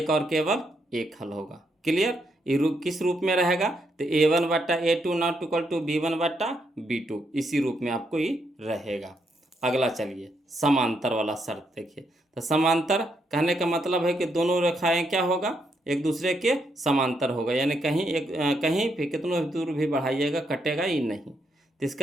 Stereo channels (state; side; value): normal; both; correlation 0.78